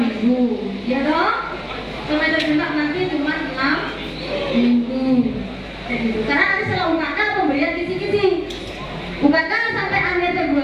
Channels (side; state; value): both; identical; correlation 1.00